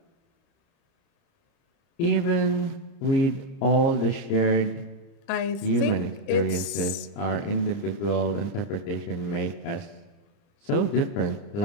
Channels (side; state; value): right; late; 31 ms